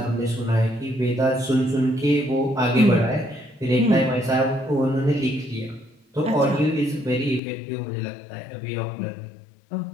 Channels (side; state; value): right; drops out; at 7.4 s